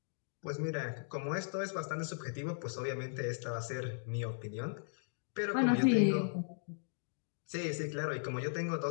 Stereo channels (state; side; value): silent; right; digital silence